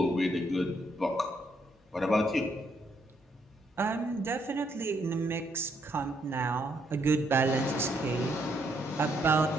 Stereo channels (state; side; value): normal; both; correlation 0.74